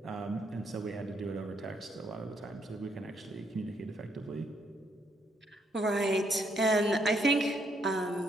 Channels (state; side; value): normal; both; correlation 0.73